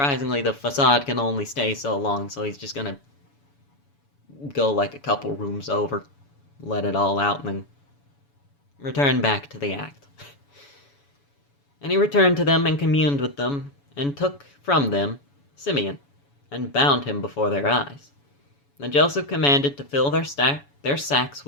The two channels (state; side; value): late; right; 7.0 ms